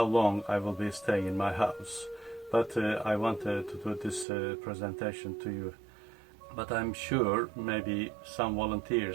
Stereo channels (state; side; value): drops out; left; at 4.2 s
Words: long I will be staying in my house, but I wanted to do this presentation to you. But I'm sure maybe some